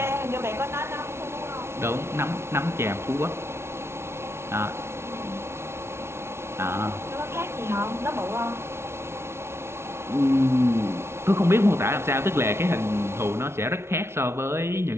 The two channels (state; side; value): late; left; 0.12 ms